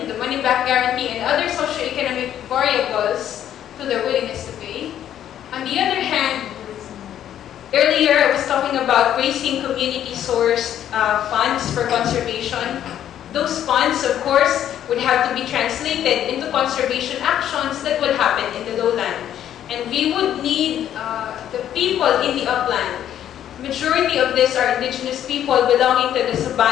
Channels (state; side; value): quieter; right; 10.7 dB